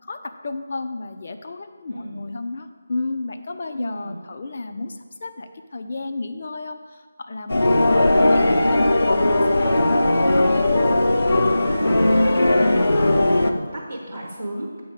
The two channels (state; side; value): inverted; both; correlation -0.95